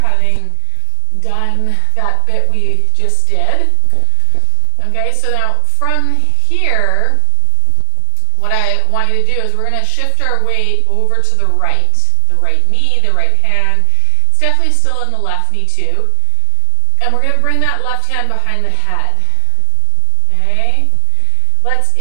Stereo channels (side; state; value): both; different; correlation 0.00